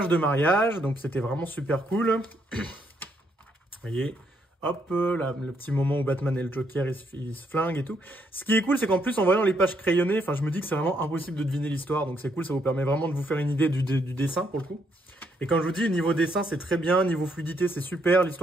de mariage, donc c'était vraiment super cool. Vous voyez, hop, là, le petit moment où Batman et le Joker, ils se flinguent et tout. Ce qui est cool, c'est qu'en plus, en voyant les pages crayonnées, enfin, je me dis que c'est vraiment impossible de deviner l'histoire. Donc c'est cool, ça vous permet vraiment de vous faire une idée du dessin, pour le coup. Et quand je vous dis, niveau dessin, c'est très bien, niveau fluidité, c'est super,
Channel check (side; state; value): both; normal; correlation 0.74